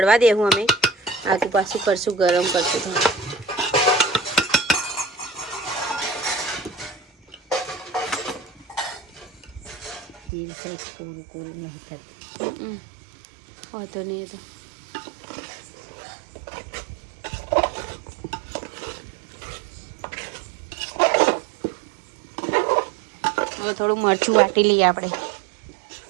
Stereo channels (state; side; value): drops out; left; at 10.3 s